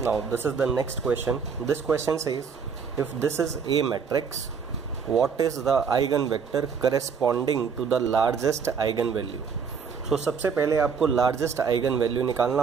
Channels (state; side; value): quieter; left; 6.2 dB